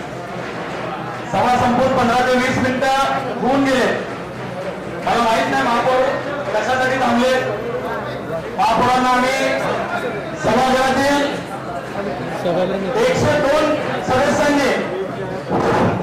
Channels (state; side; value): identical; both; correlation 1.00